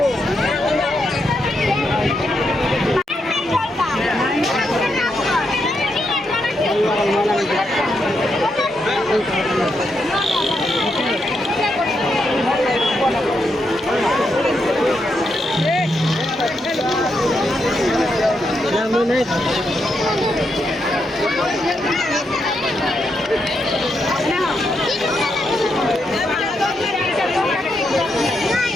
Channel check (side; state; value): both; normal; correlation 0.82